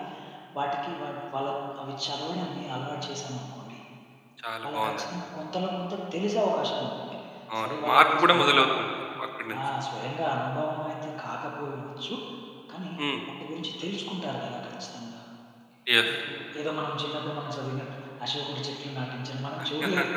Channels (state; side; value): identical; both; correlation 1.00